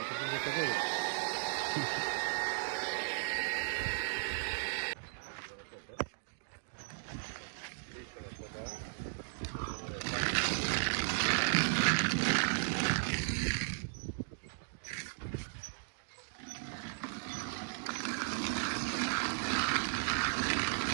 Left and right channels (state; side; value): silent; left; digital silence